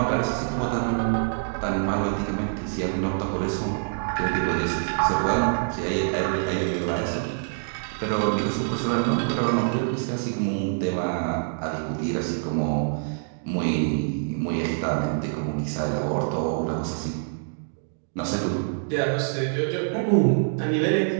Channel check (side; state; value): left; silent; digital silence